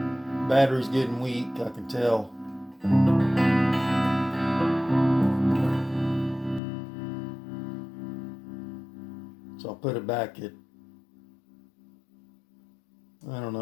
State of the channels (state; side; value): drops out; right; at 6.6 s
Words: Battery's getting weak, I can tell. So I'll put it back at, I don't know,